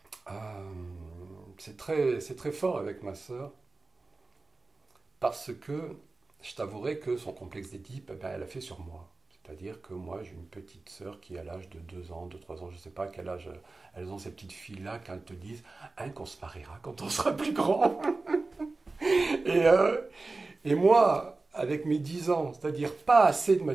c'est très fort avec ma sœur. Parce que je t'avouerai que son complexe d'Édipe, eh ben, elle a fait sur moi. C'est-à-dire que moi, j'ai une petite sœur qui a l'âge de 2 ans, de 3 ans, je ne sais pas à quel âge elles ont ces petites filles-là quand elles te disent hein, qu'on se mariera quand on sera plus grand. Et, euh, et moi, avec mes 10 ans, c'est-à-dire pas assez de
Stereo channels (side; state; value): left; quieter; 3.5 dB